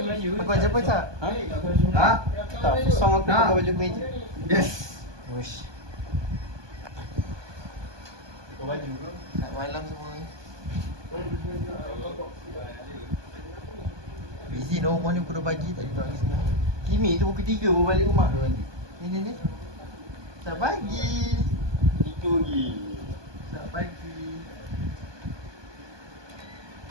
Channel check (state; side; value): late; left; 1.2 ms